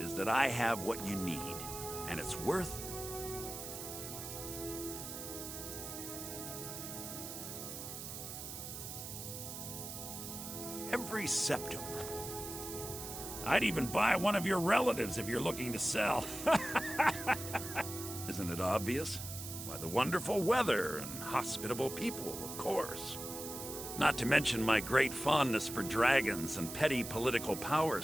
that I have what you need, and it's worth... every septum. I'd even buy one of your relatives if you're looking to sell. Isn't it obvious? Why, the wonderful weather and hospitable people, of course. Not to mention my great fondness for dragons and petty political power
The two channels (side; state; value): right; noise; hiss, 8 dB below the sound